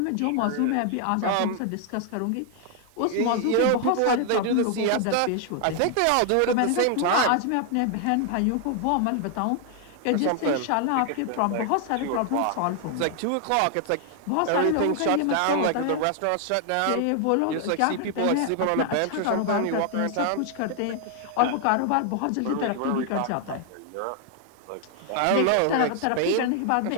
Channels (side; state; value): both; different; correlation 0.00